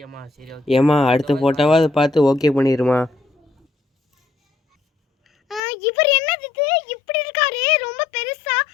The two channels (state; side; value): drops out; right; at 5.6 s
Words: ஏமா அடுத்த ஃபோட்டோவாக அதை பார்த்து ஓகே பண்ணிடுமா? இவர் என்னது இது இப்படி இருக்காரு? ரொம்ப பெருசா.